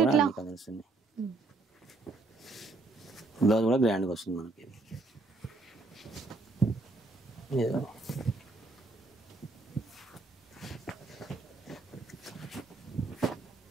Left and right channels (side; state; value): left; quieter; 3.3 dB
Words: అన్ని కలర్స్ ఉన్నాయి. బ్లౌజ్ కూడా గ్రాండ్గా వస్తుంది మనకి.